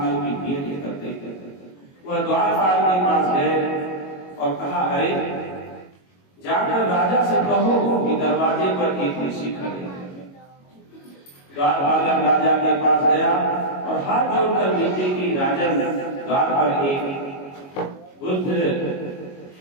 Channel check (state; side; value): late; right; 22 ms